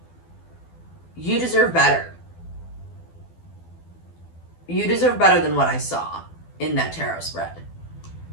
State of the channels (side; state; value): right; late; 12 ms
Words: You deserve better. You deserve better than what I saw in that tarot spread.